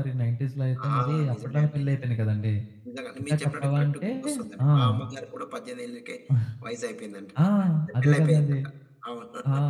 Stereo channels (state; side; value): identical; both; correlation 1.00